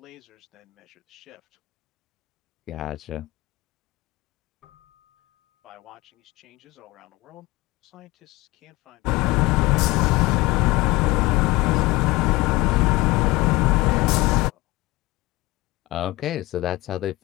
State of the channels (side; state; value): right; quieter; 20.9 dB